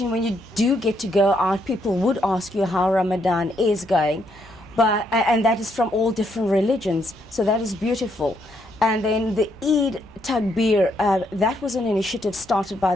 when you do get to go out, people would ask you how Ramadan is going, and that is from all different religions, so that is beautiful. And then the Eid Takbir, that was an initiative started by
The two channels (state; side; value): normal; both; correlation 0.75